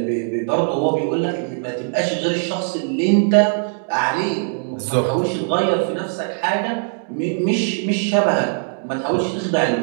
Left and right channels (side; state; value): left; silent; digital silence